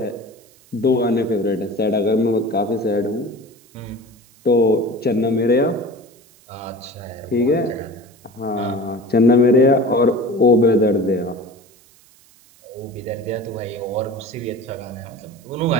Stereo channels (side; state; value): right; noise; hiss, 29 dB below the sound